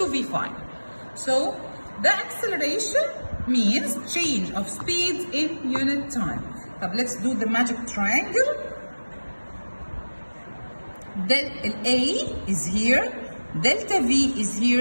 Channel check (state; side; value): inverted; both; correlation -1.00